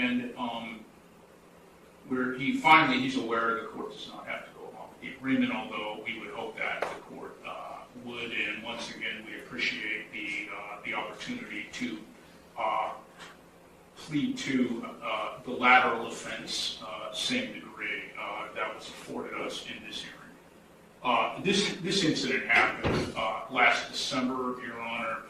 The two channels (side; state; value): both; identical; correlation 1.00